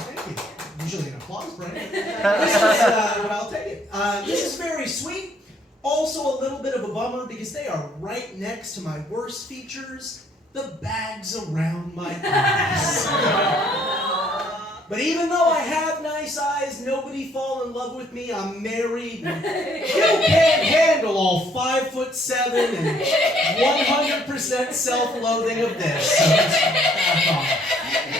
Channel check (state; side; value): normal; both; correlation 0.65